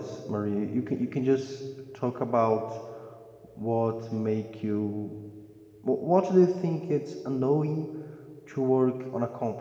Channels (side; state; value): both; identical; correlation 1.00